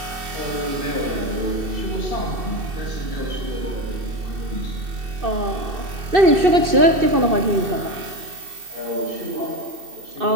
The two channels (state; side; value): late; left; 2.6 ms